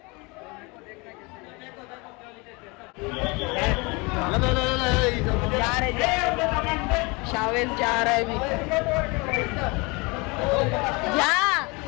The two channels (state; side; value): quieter; right; 27.3 dB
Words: जा रहे शावेल जा रहा है अभी, जा